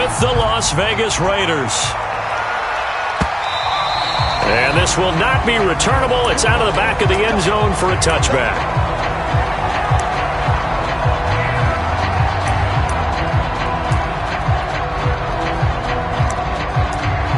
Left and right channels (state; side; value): identical; both; correlation 1.00